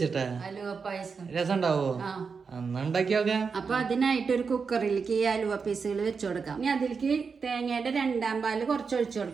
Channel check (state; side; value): quieter; left; 5.4 dB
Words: അലുവ പായസം രസം ഉണ്ടാവോ? അന്ന് ഉണ്ടാക്കി നോക്കാം. അപ്പൊ അതിനായിട്ട് ഒരു കുക്കറിലേക്ക് ഈ അലുവ പീസുകൾ വെച്ചു കൊടുക്കാം. ഇനി അതിലേക്ക് തേങ്ങയുടെ 2-ാം പാല് കുറച്ച് ഒഴിച്ചു